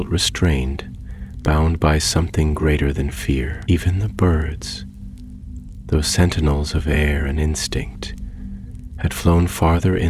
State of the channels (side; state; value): both; identical; correlation 1.00